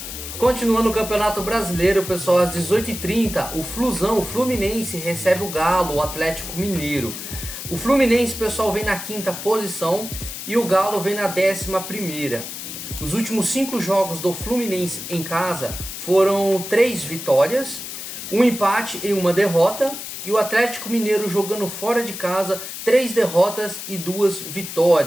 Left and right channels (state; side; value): noise; left; hiss, 8 dB below the sound